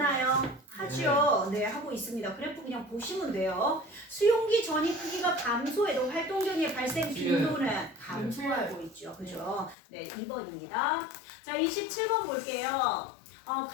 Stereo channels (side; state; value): right; drops out; at 9.8 s